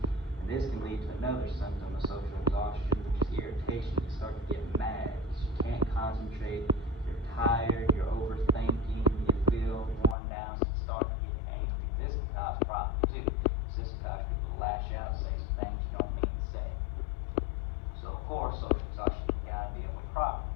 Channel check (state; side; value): drops out; right; at 10.2 s